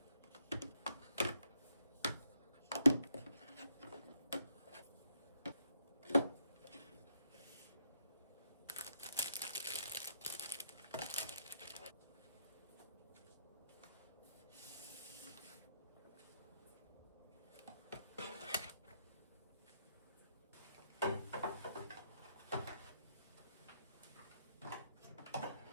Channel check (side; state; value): both; inverted; correlation -0.76